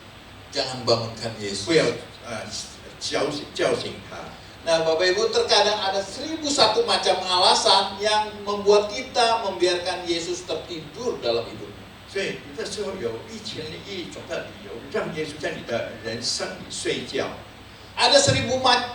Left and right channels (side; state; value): both; identical; correlation 1.00